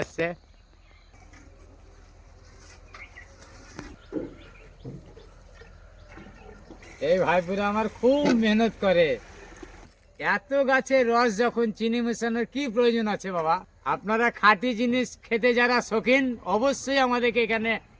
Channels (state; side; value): identical; both; correlation 1.00